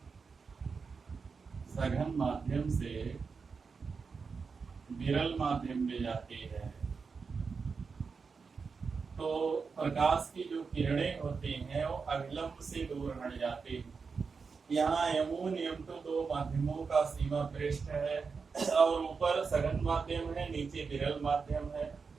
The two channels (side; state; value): left; quieter; 5.1 dB